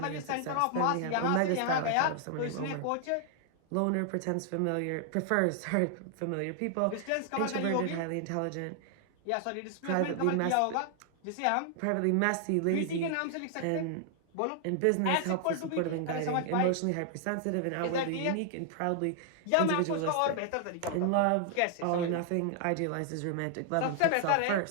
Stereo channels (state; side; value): different; both; correlation 0.00